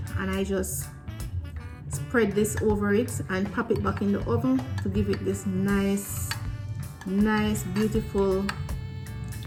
and I just spread this over it and pop it back in the oven to give it this nice, beautiful,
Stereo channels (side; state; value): both; identical; correlation 1.00